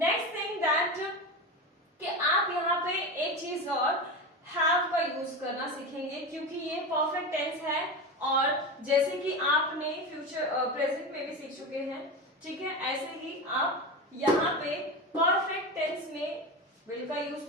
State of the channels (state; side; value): normal; both; correlation 0.22